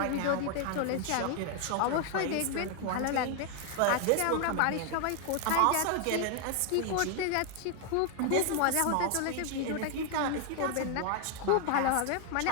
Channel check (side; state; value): both; different; correlation 0.00